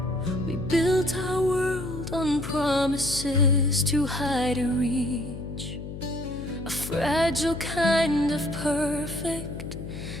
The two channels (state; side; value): noise; left; hum, 9 dB below the sound